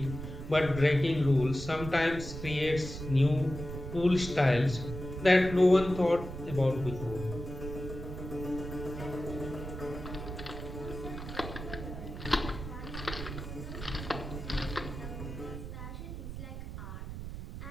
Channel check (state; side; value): noise; right; rumble, 8 dB below the sound